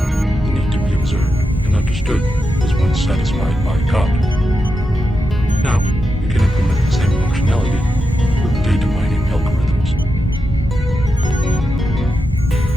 need to be observed and understood was once satisfied by God. Now, we can implement functionality with data mining algorithms.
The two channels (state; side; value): normal; both; correlation 0.88